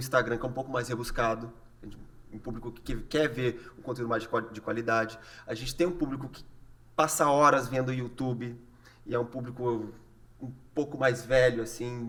que é um pouco mais rebuscado, um público que quer ver um conteúdo mais de qualidade. A gente tem um público que passa horas vendo YouTube e é um público um pouco mais velho,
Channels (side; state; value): both; identical; correlation 1.00